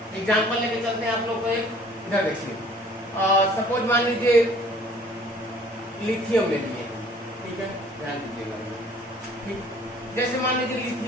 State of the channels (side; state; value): both; normal; correlation 0.54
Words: एग्जांपल लेके चलते हैं आप लोग को एक। इधर देखिए, सपोज मान लीजिए लिथियम ले लिए। ठीक है, ध्यान दीजिएगा। ठीक, जैसे मान लीजिए